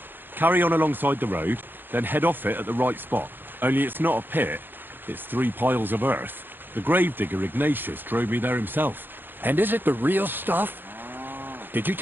carry on alongside the road, then head off it at the right spot. Only it's not a pit, it's 3 piles of earth. The gravedigger Ignatius drove me there himself. And is it the real stuff? Did you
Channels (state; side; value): late; left; 0.096 ms